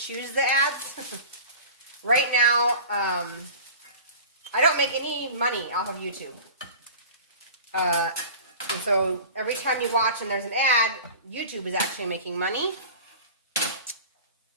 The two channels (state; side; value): inverted; both; correlation -0.38